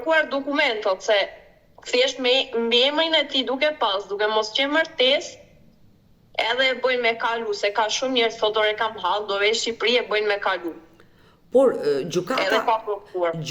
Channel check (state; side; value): identical; both; correlation 1.00